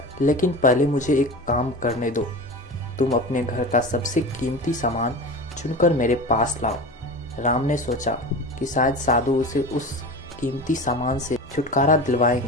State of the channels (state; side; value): normal; both; correlation 0.30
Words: लेकिन पहले मुझे एक काम करने दो। तुम अपने घर का सबसे कीमती सामान चुनकर मेरे पास लाओ। राम ने सोचा कि शायद साधु उसे उस कीमती सामान से छुटकारा